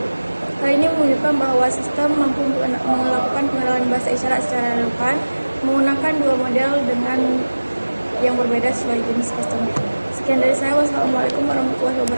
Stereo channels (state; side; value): inverted; both; correlation -1.00